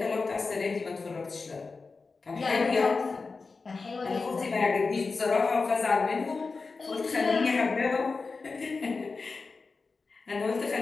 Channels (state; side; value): quieter; right; 4.3 dB